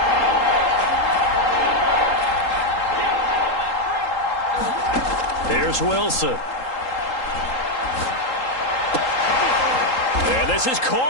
Here's Wilson. And this is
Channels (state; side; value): late; right; 3.8 ms